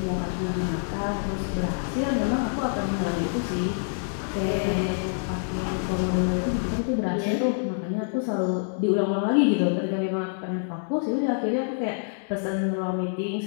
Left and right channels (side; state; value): right; silent; digital silence